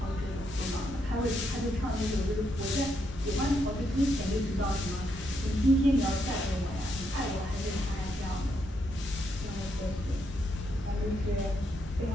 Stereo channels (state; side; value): normal; both; correlation 0.78